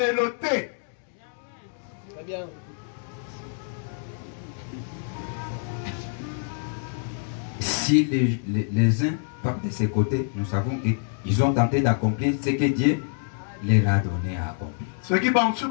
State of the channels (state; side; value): silent; right; digital silence